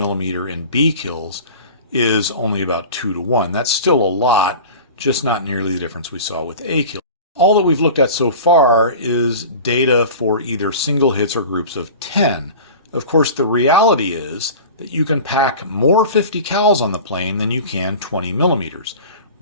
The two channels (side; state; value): both; inverted; correlation -0.37